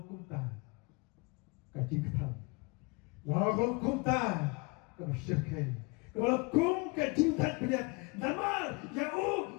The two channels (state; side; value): quieter; right; 29.3 dB